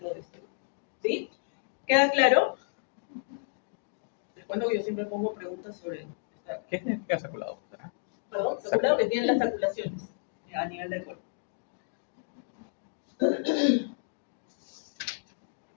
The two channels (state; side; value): silent; right; digital silence